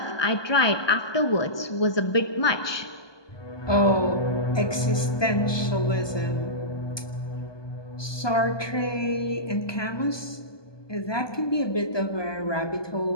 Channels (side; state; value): right; late; 1.2 ms